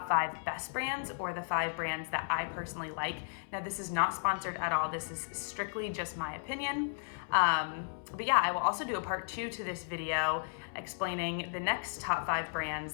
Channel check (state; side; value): silent; right; 55 dB below the other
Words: 5 best brands, or the 5 brands that I personally like. Now, this is not sponsored at all. This is strictly just my opinion. But yeah, I will also do a part 2 to this video explaining the next top 5